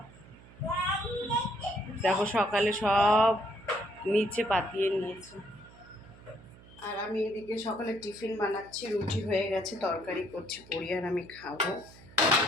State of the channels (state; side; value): noise; right; hum, 22 dB below the sound